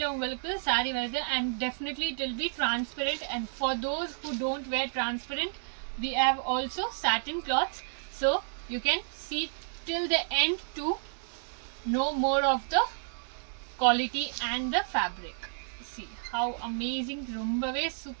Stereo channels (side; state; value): left; silent; digital silence